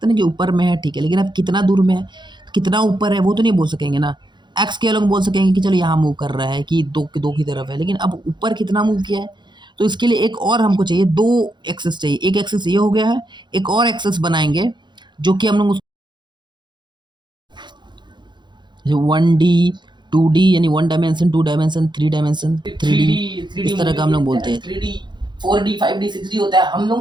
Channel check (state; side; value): late; left; 0.22 ms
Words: ना कि ऊपर में है, ठीक है? लेकिन अब कितना दूर में है, कितना ऊपर है, वो तो नहीं बोल सकेंगे ना। एक्स के अलग बोल सकेंगे कि चलो यहाँ मूव कर रहा है कि दो की तरफ है, लेकिन अब ऊपर कितना मूव किया है, तो इसके लिए एक और हमको चाहिए, दो एक्सेस चाहिए। एक एक्सेस ये हो गया है, एक और एक्सेस बनाएंगे जो कि हम लोग 1D 2D यानी 1 डायमेंशन 2 डायमेंशन 3 डायमेंशन 3D, इस तरह का हम लोग बोलते हैं। 3D 4D 5D 6D होता है, हम